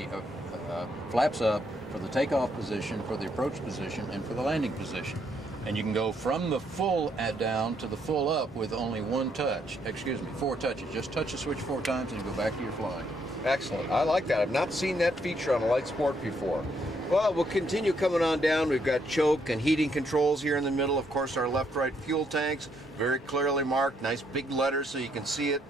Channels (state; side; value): normal; both; correlation 0.73